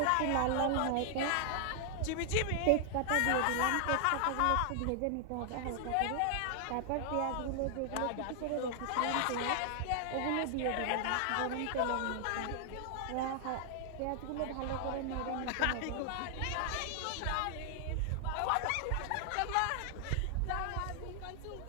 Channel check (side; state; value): both; different; correlation 0.00